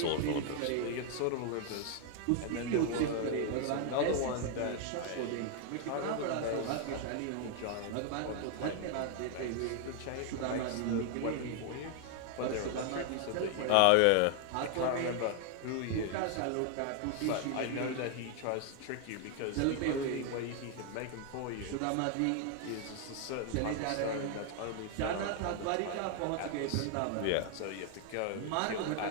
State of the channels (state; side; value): different; both; correlation 0.00